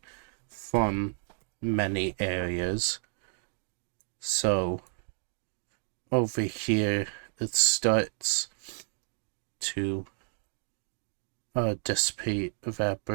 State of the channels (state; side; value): silent; left; digital silence